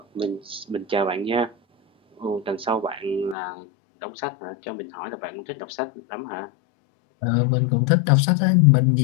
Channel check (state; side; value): drops out; right; at 3.4 s